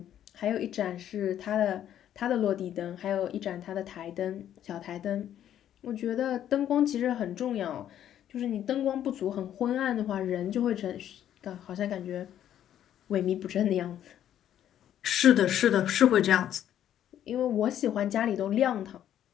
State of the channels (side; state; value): right; quieter; 10.8 dB